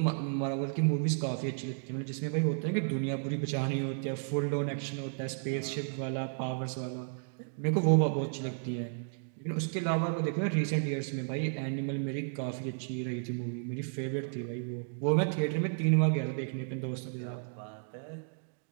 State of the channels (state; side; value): silent; left; digital silence